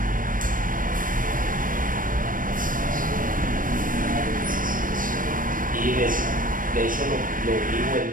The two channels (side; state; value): left; late; 0.40 ms